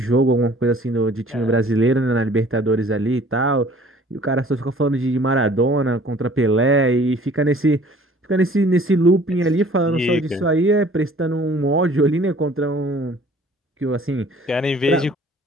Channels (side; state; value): both; normal; correlation 0.53